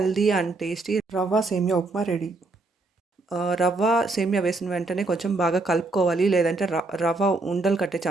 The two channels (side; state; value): left; quieter; 3.3 dB